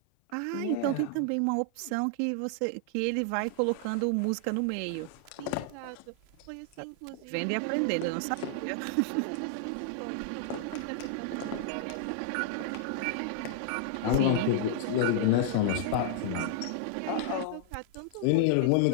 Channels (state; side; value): different; both; correlation -0.01